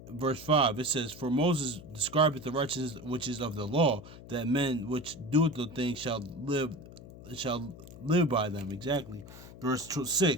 verse 5, it says, for Moses describeth the righteousness which is of the law, that men which doeth the thing shall live by them. Exactly. Verse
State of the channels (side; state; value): left; noise; hum, 16 dB below the sound